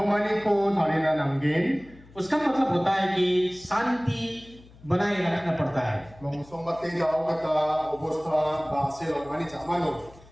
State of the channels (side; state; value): left; noise; hum, 23 dB below the sound